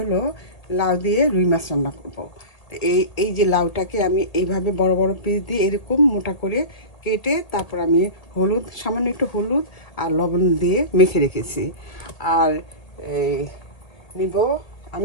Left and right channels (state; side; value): late; right; 1.9 ms